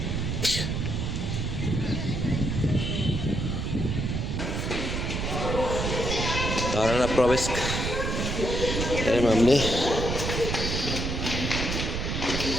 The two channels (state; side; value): noise; right; rumble, 1 dB below the sound